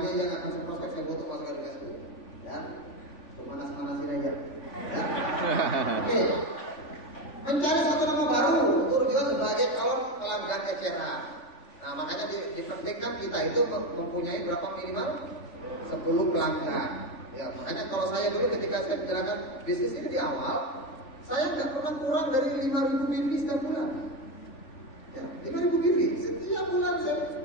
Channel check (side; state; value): right; late; 3.4 ms